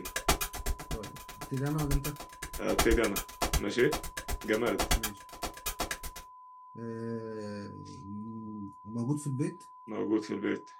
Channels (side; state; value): both; identical; correlation 1.00